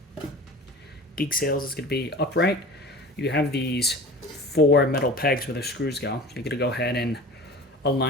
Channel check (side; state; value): both; normal; correlation 0.38